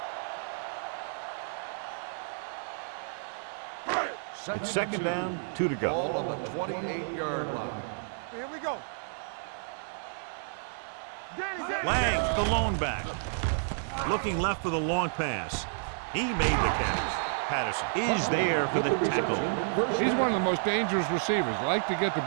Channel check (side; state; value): left; silent; digital silence